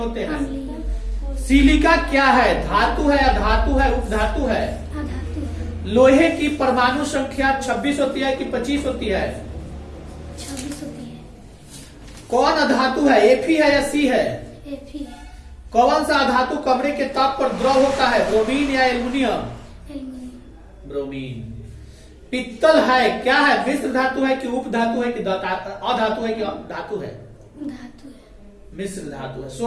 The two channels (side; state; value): both; identical; correlation 1.00